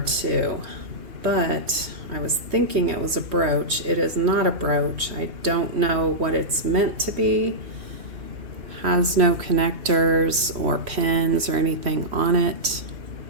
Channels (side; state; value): left; late; 3.1 ms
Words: too, but I was thinking it was a brooch. It is not a brooch. I don't know what it's meant to be. Has no connectors or pins or anything on it.